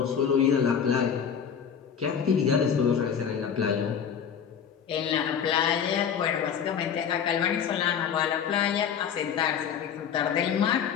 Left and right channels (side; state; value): right; quieter; 7.7 dB